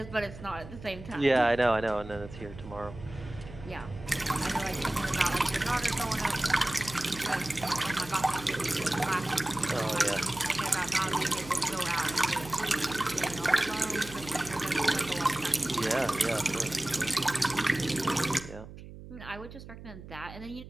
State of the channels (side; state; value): right; noise; hum, 14 dB below the sound